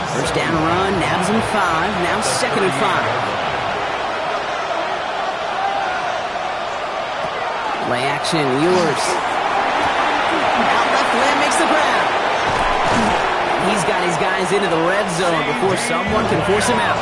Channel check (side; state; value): both; identical; correlation 1.00